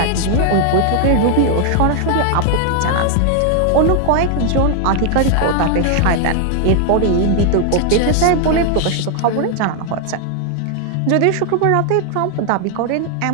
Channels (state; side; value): different; both; correlation 0.00